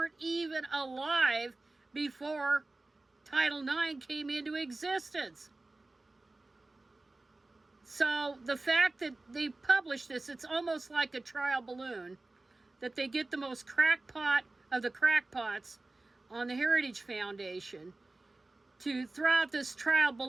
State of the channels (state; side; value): quieter; left; 3.1 dB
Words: even alive before Title IX came into existence. So the fact that they publish this, it's almost like a trial balloon, that they get the most crackpot of the crackpots on the Heritage Foundation to throw out this trial